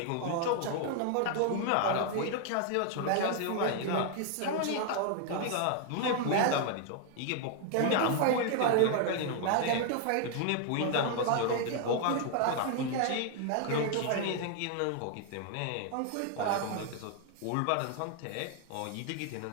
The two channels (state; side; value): different; both; correlation 0.00